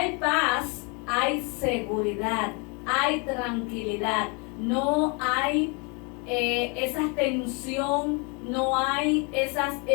paz, hay seguridad, hay tranquilidad, no hay esa tensión, no hay esas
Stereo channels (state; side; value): quieter; right; 32.8 dB